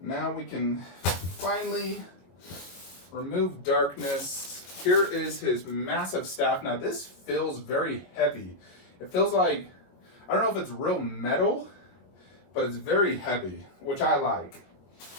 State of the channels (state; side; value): late; right; 22 ms